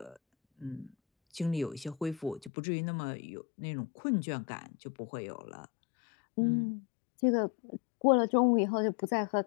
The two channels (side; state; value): right; drops out; at 2.5 s